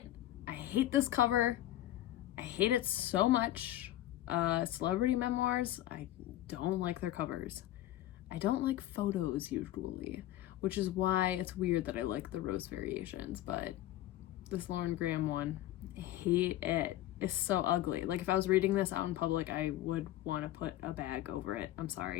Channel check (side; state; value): right; quieter; 14.2 dB